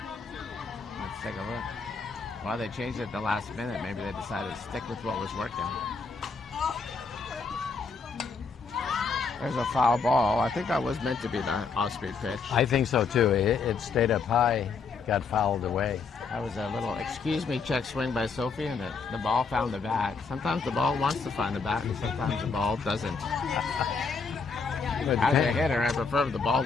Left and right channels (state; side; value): quieter; right; 4.9 dB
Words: Let's take a look. Well, they changed it at the last minute. Maybe they decided to stick with what was working. There's a foul ball. I think that was meant to be the off-speed pitch. I think so too. It stayed up high, got fouled away. That was a little excuse me check swing by Sophie, and the ball found the bat. Sometimes the ball wants to find the bat, and sometimes the ball doesn't. As a hitter, I prefer if the ball